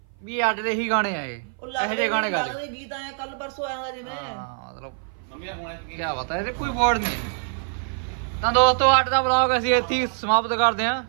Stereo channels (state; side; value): silent; left; 57 dB below the other